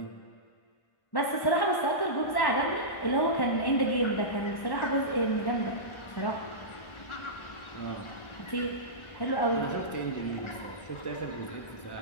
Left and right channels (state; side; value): late; right; 1.4 ms